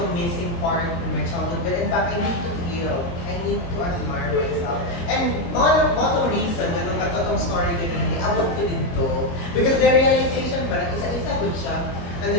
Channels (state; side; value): late; right; 22 ms